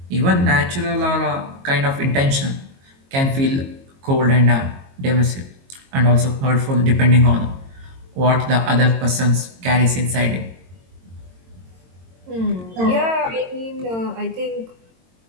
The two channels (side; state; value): left; late; 22 ms